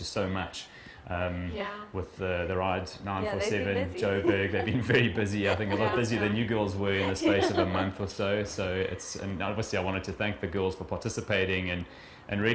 so much with the Ride 947, Joburg. They've been very busy. I think a lot busier than you girls were in the space of a month or so. And obviously I wanted to thank the girls for participating and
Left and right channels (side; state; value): both; identical; correlation 1.00